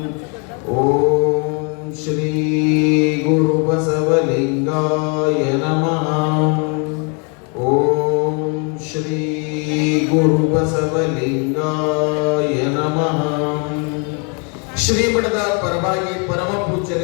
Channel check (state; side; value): quieter; right; 36.3 dB